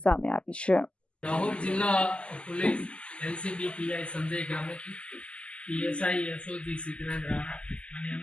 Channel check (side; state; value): right; late; 0.054 ms